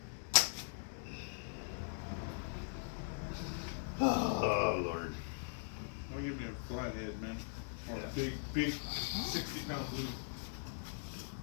Oh, Lord. Why give me a flathead, man? Or Yeah. a big 60-pound blue.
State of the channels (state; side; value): silent; right; digital silence